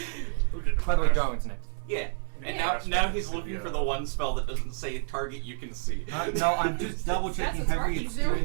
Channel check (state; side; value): silent; left; 57 dB below the other